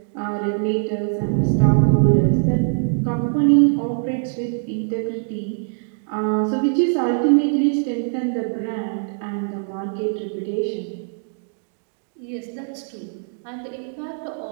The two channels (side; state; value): left; silent; digital silence